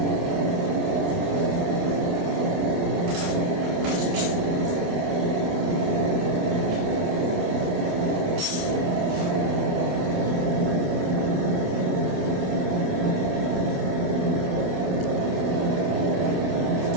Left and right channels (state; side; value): late; left; 28 ms